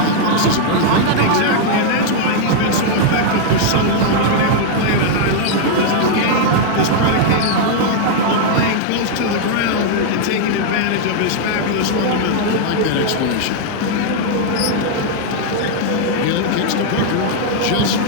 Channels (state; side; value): different; both; correlation -0.01